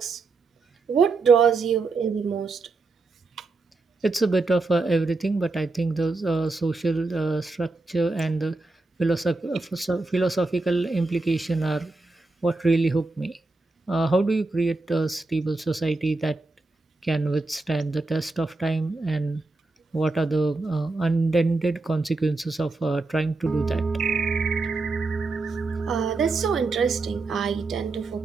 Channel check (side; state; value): left; quieter; 3.5 dB